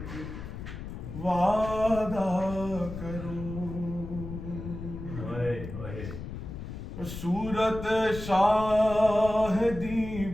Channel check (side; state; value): left; noise; rumble, 9 dB below the sound